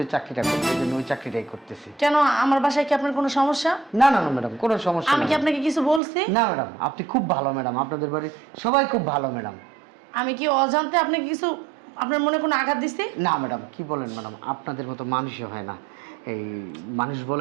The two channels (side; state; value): left; drops out; at 6.0 s